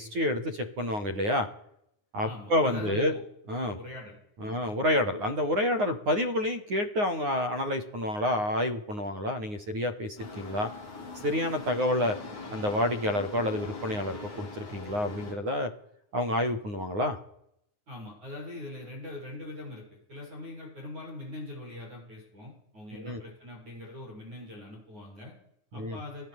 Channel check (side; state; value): left; late; 9.6 ms